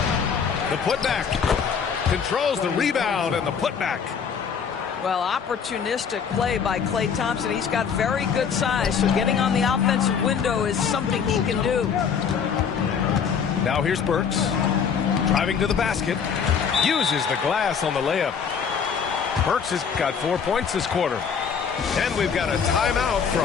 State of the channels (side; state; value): right; quieter; 6.7 dB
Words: The putback. Controls the rebound and the putback. Well, opportunistic play by Klay Thompson. He's got very good size, so getting on the offensive window is something he can do. Now here's Burks. Driving to the basket. Uses the glass on the layup. Burks has got 4 points this quarter. And we've got a timeout